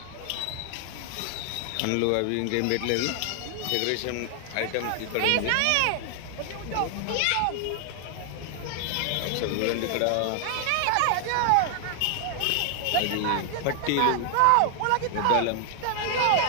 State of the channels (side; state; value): both; different; correlation 0.00